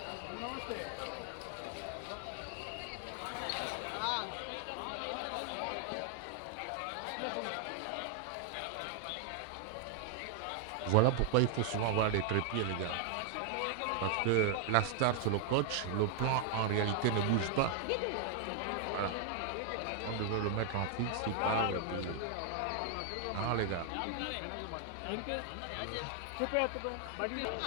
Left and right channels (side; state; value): both; different; correlation 0.00